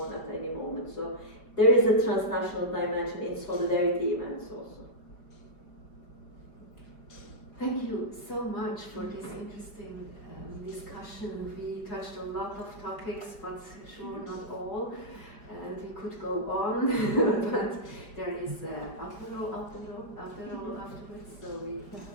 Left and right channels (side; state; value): right; late; 5.0 ms